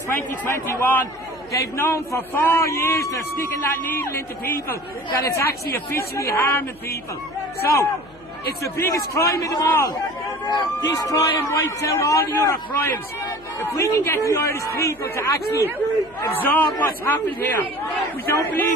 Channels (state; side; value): noise; left; hum, 26 dB below the sound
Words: They've known for 4 years they're sticking that needle into people, that it's actually officially harming people. So, it's the biggest crime of them all. This crime wipes out all the other crimes. If we can get the Irish people to actually absorb what's happened here, we don't